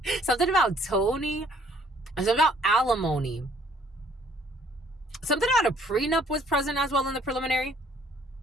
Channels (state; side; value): normal; both; correlation 0.61